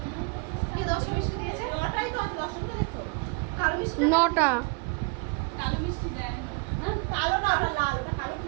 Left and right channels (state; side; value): quieter; left; 32.5 dB